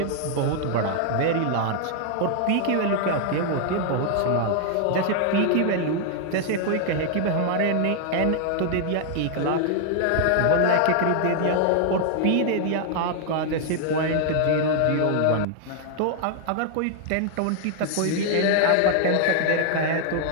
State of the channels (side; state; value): both; different; correlation 0.00